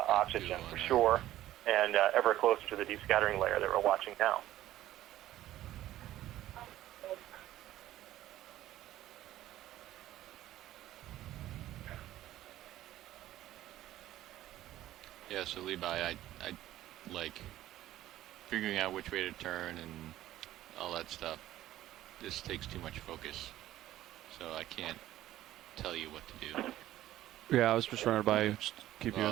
for sure, and ever closer to the deep scattering layer that we're watching now. Yeah, so Levi, I like figuring out which way to turn and all that stuff. This takes too much focus, so I can't tell you what to do. Yeah, I was just running by, just keep you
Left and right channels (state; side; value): quieter; left; 14.1 dB